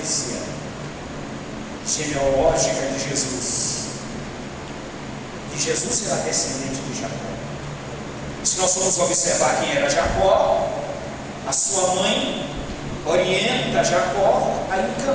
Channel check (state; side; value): identical; both; correlation 1.00